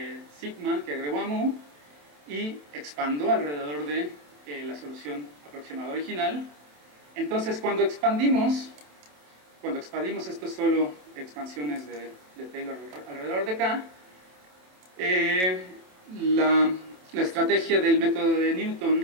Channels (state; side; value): late; left; 27 ms